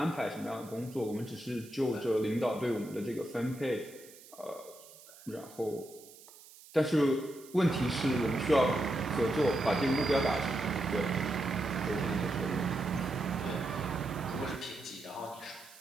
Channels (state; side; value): noise; right; hiss, 21 dB below the sound